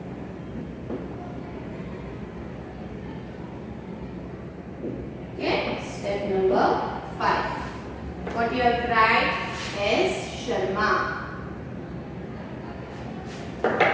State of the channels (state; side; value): identical; both; correlation 1.00